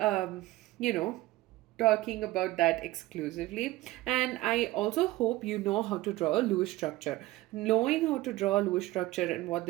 know, talking about that exclusively, and I also hope you know how to draw a Lewis structure. Knowing how to draw a Lewis structure and what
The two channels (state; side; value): quieter; left; 18.0 dB